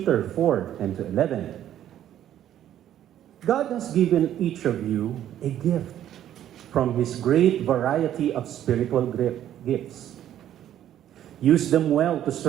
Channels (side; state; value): left; quieter; 11.3 dB